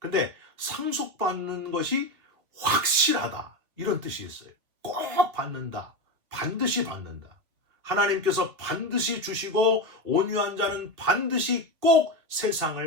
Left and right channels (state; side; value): late; left; 2.9 ms